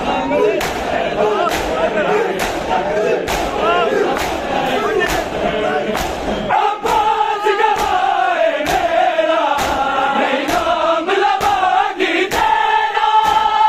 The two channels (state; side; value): identical; both; correlation 1.00